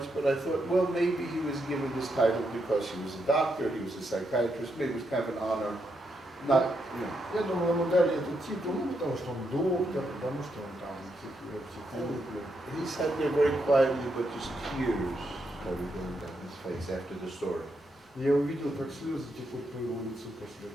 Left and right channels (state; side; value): normal; both; correlation 0.81